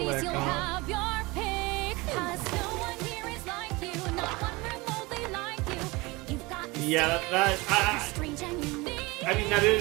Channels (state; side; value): quieter; left; 23.5 dB